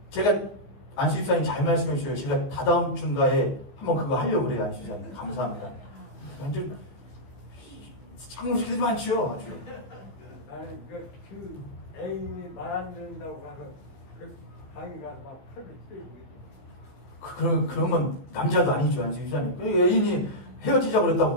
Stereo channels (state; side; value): late; right; 15 ms